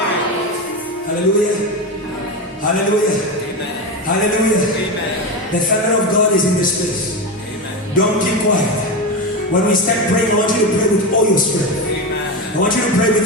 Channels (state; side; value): normal; both; correlation 0.17